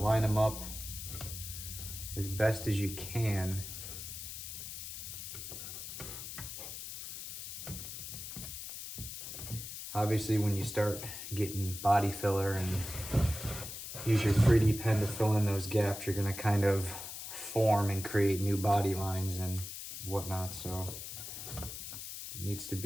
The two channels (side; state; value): left; noise; hiss, 8 dB below the sound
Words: them up as best as you can. Obviously, when you start getting body filler and use your 3D pen to fill in those gaps, you're going to kind of form and create new body lines and whatnot. So it needs to